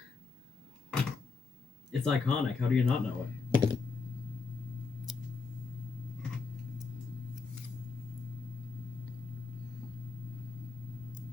It's iconic. How do you not know it?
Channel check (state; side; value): quieter; right; 4.8 dB